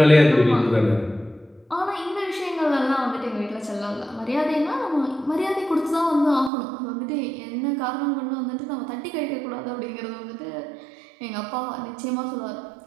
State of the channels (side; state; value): left; drops out; at 6.5 s